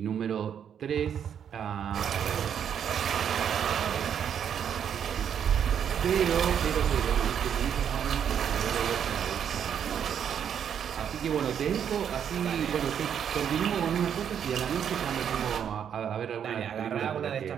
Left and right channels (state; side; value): quieter; left; 8.5 dB